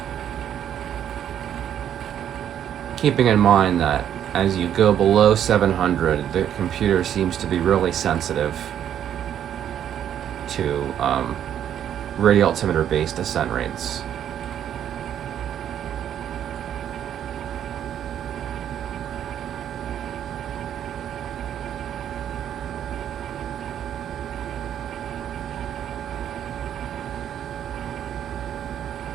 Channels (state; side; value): quieter; left; 10.0 dB